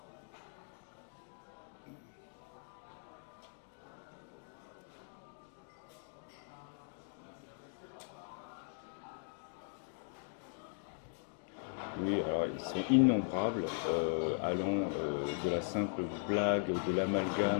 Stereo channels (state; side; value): silent; right; 52 dB below the other